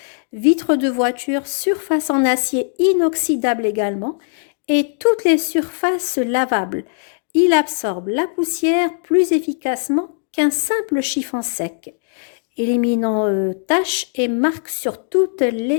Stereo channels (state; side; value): silent; right; digital silence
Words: vitres de voiture, surface en acier inoxydable également et toutes les surfaces lavables. Il absorbe la poussière plus efficacement qu'un simple chiffon sec éliminant taches et marques sur toutes